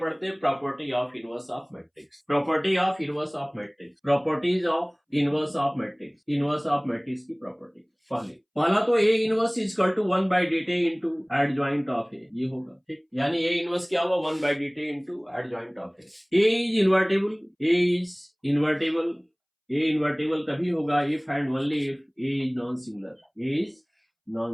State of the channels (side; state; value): both; identical; correlation 1.00